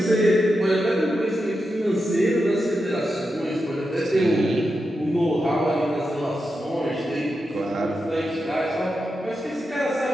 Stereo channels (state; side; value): normal; both; correlation 0.88